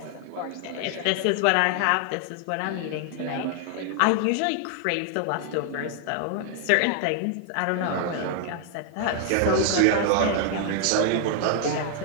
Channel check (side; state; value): both; different; correlation 0.00